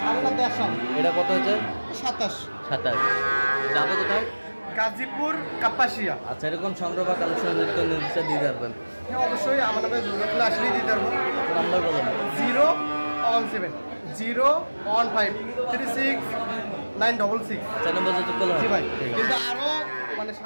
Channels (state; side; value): inverted; both; correlation -1.00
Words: আমরা দেখাম। এটা কত হয়েছে? 27। 27। যাবে কোথায়? গাজীপুর কাপাসিয়া। আচ্ছা, এরকম সংগ্রহ বা কালেকশন নির্দিষ্ট দিয়ে পারবেন? হ্যাঁ, অবশ্যই আমার নামে যোগাযোগ আসলেই দিতে পারবো। নাম্বার বলেন। 017 015 36 966। 4 নম্বর যোগাযোগ করলে জি ভাই, ঠিক আছে। কিন্তু আরো মানে